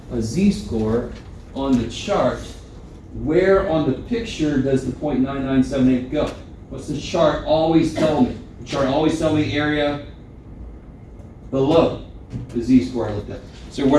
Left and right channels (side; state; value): both; identical; correlation 1.00